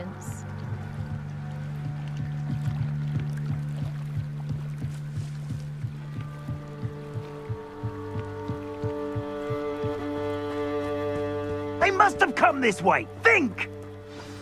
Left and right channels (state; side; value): identical; both; correlation 1.00